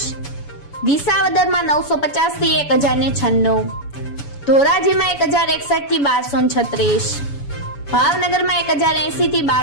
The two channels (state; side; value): late; right; 7.0 ms